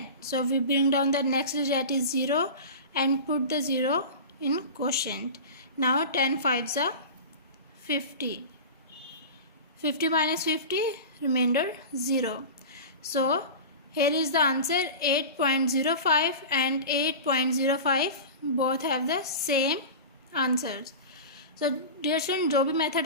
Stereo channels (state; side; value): inverted; both; correlation -0.31